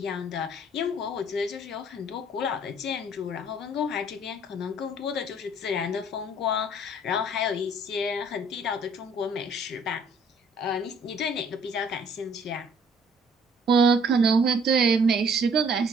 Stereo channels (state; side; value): normal; both; correlation 0.58